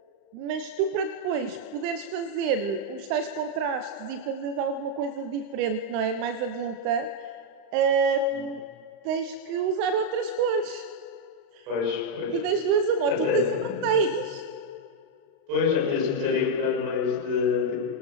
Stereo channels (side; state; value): left; late; 35 ms